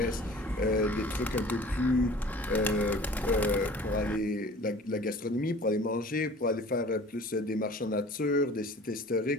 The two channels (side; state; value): both; normal; correlation 0.45